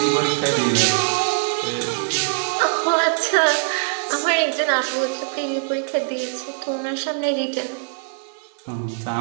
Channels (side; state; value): left; silent; digital silence